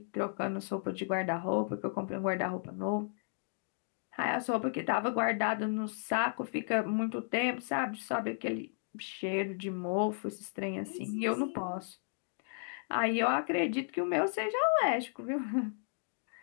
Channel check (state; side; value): silent; right; digital silence